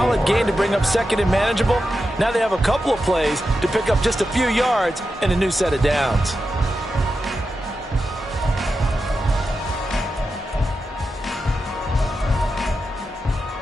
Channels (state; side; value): normal; both; correlation 0.89